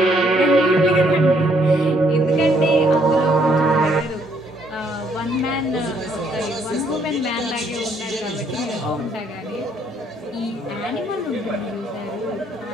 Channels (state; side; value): normal; both; correlation 0.68